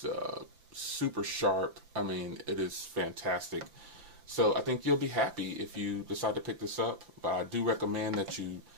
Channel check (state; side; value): late; left; 5.8 ms